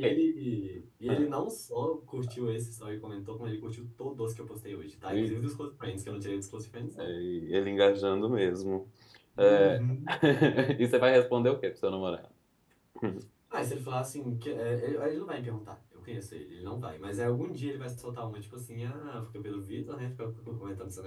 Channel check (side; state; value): both; identical; correlation 1.00